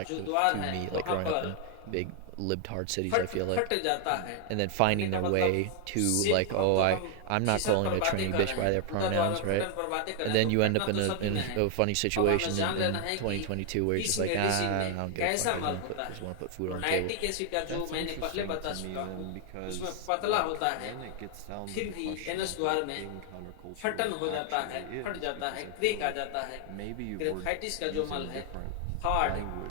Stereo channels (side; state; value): both; different; correlation 0.00